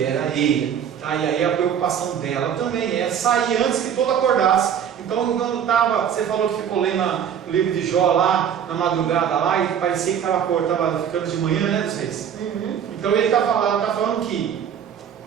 a ele. Tá? E aí a preocupação dela também é sair antes que todo acordasse. Então, quando você falou que ficou lendo o livro de Jó lá, na madrugada lá, e parecia que estava ficando de manhã, né, dos reis? Então ele está falando que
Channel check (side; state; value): left; quieter; 8.6 dB